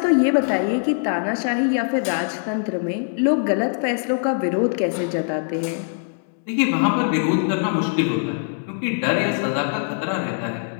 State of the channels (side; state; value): right; silent; digital silence